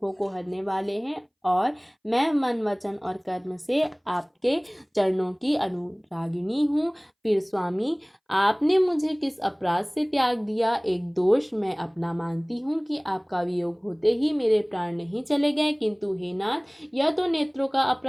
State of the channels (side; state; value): both; identical; correlation 1.00